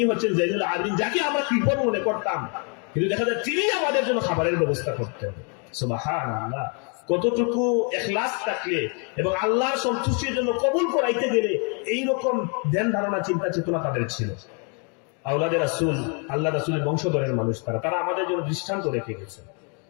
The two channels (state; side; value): quieter; right; 37.0 dB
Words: হচ্ছেন জাইনুল আবিদিন, যাকে আমরা কৃপণ মনে করতাম, কিন্তু দেখা যায় তিনি আমাদের জন্য খাবারের ব্যবস্থা করতেন। সুবহানাল্লাহ। কতটুকু ইখলাস থাকলে এবং আল্লাহর সন্তুষ্টির জন্য কবুল করাইতে গেলে এইরকম ধ্যান ধারণা চিন্তা চেতনা তাদের ছিল। আওলাদে রাসূল, আল্লাহ রাসূলের বংশধরের মানুষ, তারা আমাদের জন্য দৃষ্টান্ত রেখে গেছে।